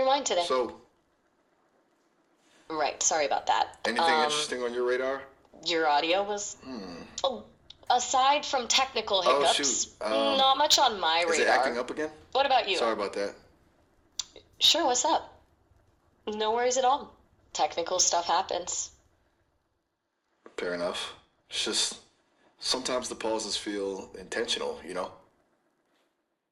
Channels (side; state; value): both; identical; correlation 1.00